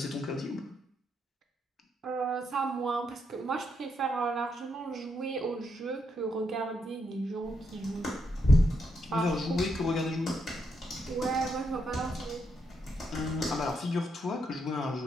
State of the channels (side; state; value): both; normal; correlation 0.79